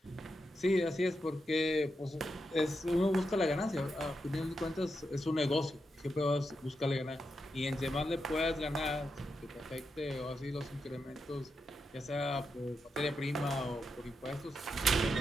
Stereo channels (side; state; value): both; normal; correlation 0.86